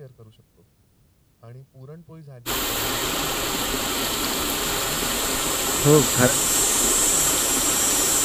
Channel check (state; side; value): identical; both; correlation 1.00